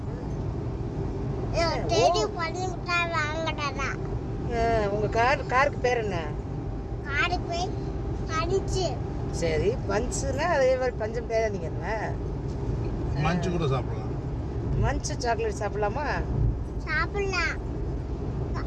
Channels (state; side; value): identical; both; correlation 1.00